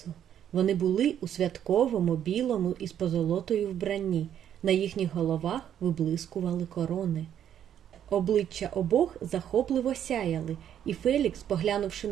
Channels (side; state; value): left; quieter; 9.9 dB